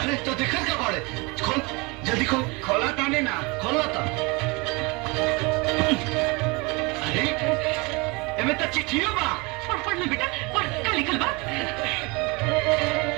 तो देखत का बाड़े? खोल, जल्दी खोल। खोला ताने ना। खोलो तो। अरे एमे तो चिट्ठियों बा। पढ़ ले बेटा, पढ़, का लिखल बा?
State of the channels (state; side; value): quieter; left; 27.0 dB